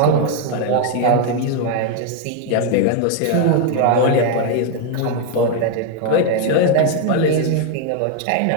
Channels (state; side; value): different; both; correlation 0.01